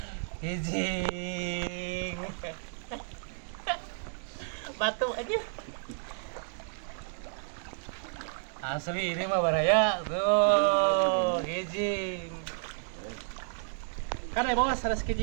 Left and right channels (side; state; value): left; silent; digital silence